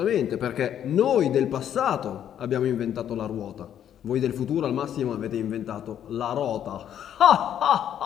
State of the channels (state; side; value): quieter; right; 10.0 dB